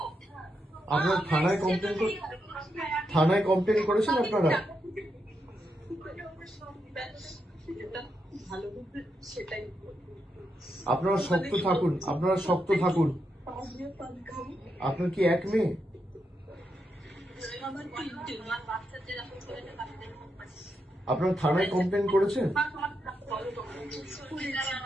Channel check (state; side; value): normal; both; correlation 0.84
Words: আপনারা থানায় কমপ্লেন করেছেন আপনারা? আপনারা শক্ত থাকুন, আপনার কি এক মেয়ে? আপনারা থানায় কমপ্লেন করেছেন?